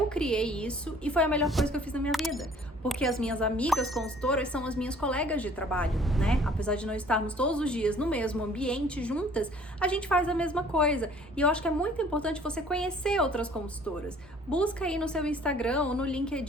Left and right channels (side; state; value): both; normal; correlation 0.54